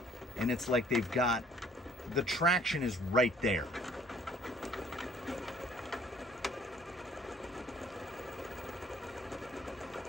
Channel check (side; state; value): both; normal; correlation 0.58